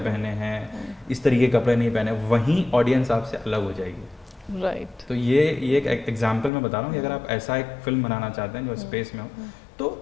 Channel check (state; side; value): drops out; right; at 6.5 s